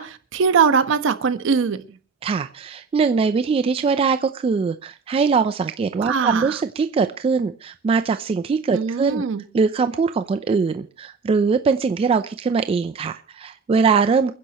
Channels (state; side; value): quieter; left; 5.0 dB